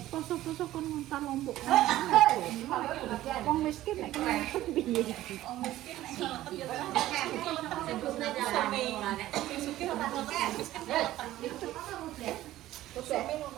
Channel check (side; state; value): left; quieter; 14.8 dB